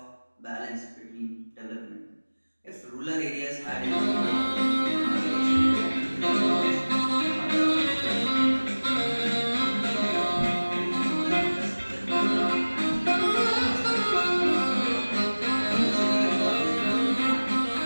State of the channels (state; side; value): inverted; both; correlation -1.00